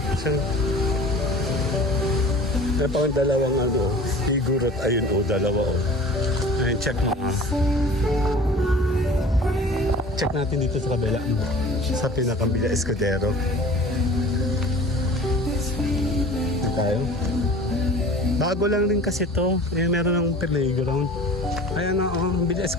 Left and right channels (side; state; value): both; normal; correlation 0.43